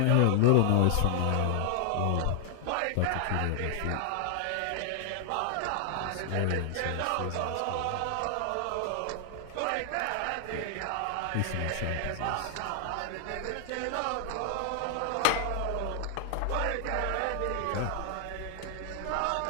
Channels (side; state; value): both; different; correlation 0.00